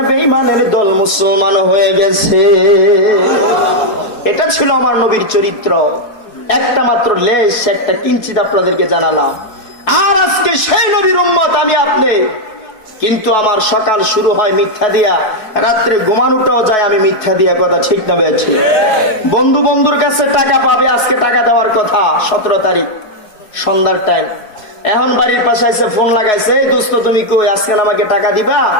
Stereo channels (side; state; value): right; late; 4.7 ms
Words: বেঈমানের দল মুসলমান হয়ে গেছে। এটা ছিল আমার নবীর চরিত্র। একটা মাত্র লেশ, একটা কিঞ্চিত আপনাদেরকে জানালাম। আর আজকে সেই নবীর উম্মত আমি আপনি, কিন্তু আমার সকাল শুরু হয় মিথ্যা দিয়া, রাত্রে ঘুমানোটাও যায় আমি মিথ্যা দিয়া। কথা ঠিক না বেঠি? বন্ধু বন্ধুর কাছে টাকা পাবে, আজকে টাকা দেওয়ার কথা 17 তারিখ সন্ধ্যার টাইম। এখন বাড়ির পাশে এসে ফোন লাগাইছে, এই দোস্ত তুমি কই, আজকে আমাকে টাকা দিবা?